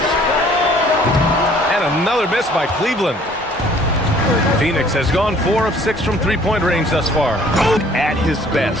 And another miss by Cleveland. Phoenix has gone 4 of 6 from three-point range thus far. At his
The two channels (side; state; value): both; normal; correlation 0.56